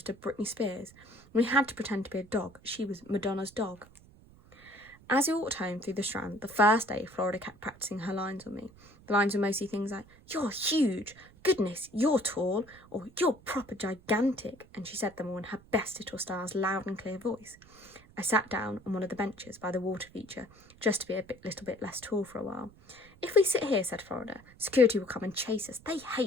of Britney Spears. We had to pretend to be a dog. She was Madonna's dog. As we walked home through the Strand, the first day, Florida kept practising her lines on me. The lines were mostly things like, "You're huge," "Goodness, you're tall," or "You're proper gigantic," and she said them all in her best little style's loud and clear voice. I sat down on one of the benches by the water feature, just to be little bit less tall for a while. "If we sit here," said Florida, "security will come and chase us. They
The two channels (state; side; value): noise; right; rumble, 24 dB below the sound